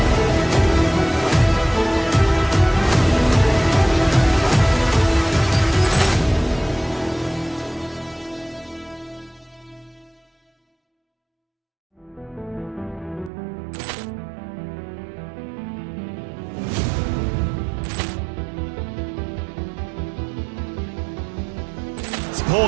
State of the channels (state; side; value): drops out; left; at 13.3 s